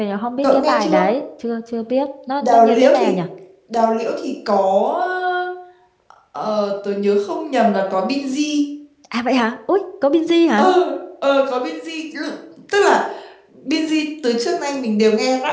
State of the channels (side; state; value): both; identical; correlation 1.00